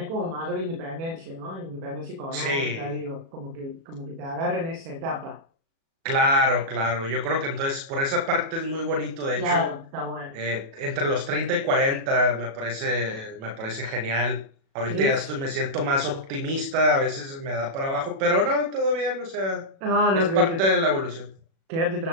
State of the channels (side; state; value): left; late; 36 ms